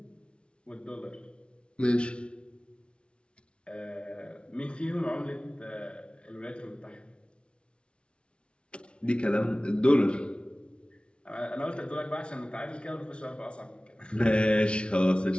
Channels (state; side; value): late; right; 0.058 ms